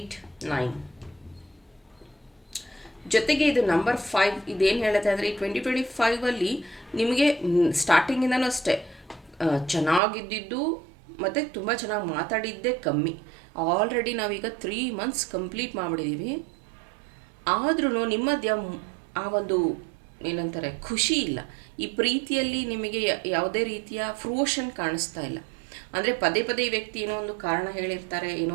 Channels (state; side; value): drops out; left; at 10.0 s